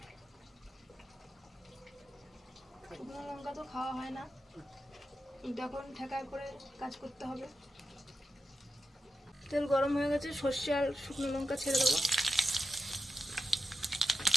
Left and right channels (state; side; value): normal; both; correlation 0.89